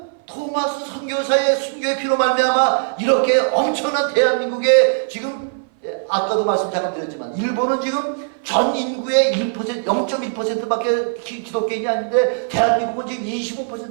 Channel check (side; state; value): left; silent; 58 dB below the other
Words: 토마스 선교사의 순교의 피로 말미암아 이렇게 엄청난 대한민국에 지금 아까도 말씀 잠깐 드렸지만 일본은 지금 전 인구의 1%, 0.1%밖에 기독교인이 아닌데 대한민국은 지금